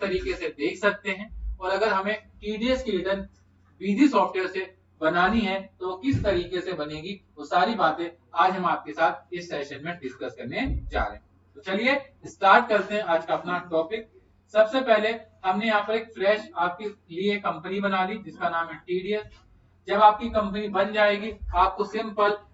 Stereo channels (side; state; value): both; identical; correlation 1.00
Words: से देख सकते हैं, और अगर हमें टीडीएस की रिटर्न बिजी सॉफ्टवेयर से बनानी है तो वो किस तरीके से बनेगी, वो सारी बातें आज हम आपके साथ इस सेशन में डिस्कस करने जा रहे हैं। तो चलिए स्टार्ट करते हैं आज का अपना टॉपिक। सबसे पहले हमने यहाँ पर एक फ्रेश आपके लिए कंपनी बना ली जिसका नाम है टीडीएस। जब आपकी कंपनी बन जाएगी आपको सिंपल